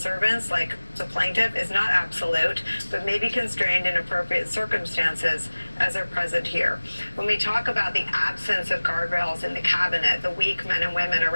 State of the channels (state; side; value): inverted; both; correlation -1.00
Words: like the plaintiff is not absolute, but may be constrained in appropriate circumstances as are present here. When we talk about the absence of guardrails in the cabinet, the weak men and women